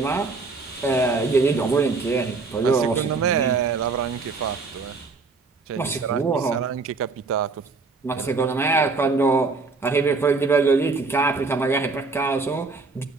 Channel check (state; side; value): quieter; left; 4.1 dB